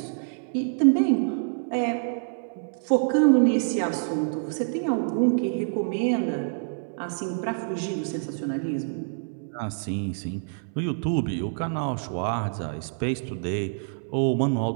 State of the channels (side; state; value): left; silent; 60 dB below the other